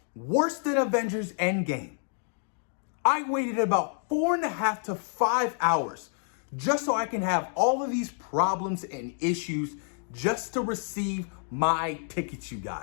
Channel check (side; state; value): right; silent; 58 dB below the other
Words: Worse than Avengers Endgame. I waited about 4.5 to 5 hours just so I can have all of these problems and issues just to receive my tickets, you